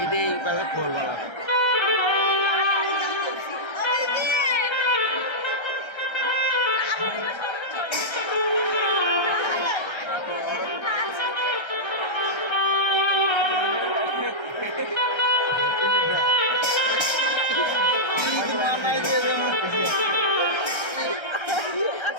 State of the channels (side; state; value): right; late; 1.3 ms